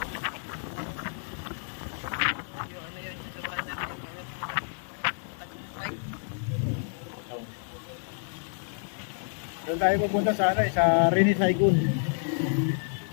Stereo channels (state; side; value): silent; right; 58 dB below the other